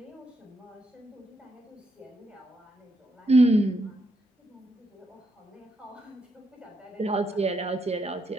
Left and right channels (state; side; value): normal; both; correlation 0.78